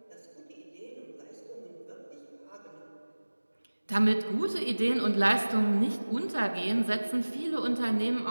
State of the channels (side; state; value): both; inverted; correlation -1.00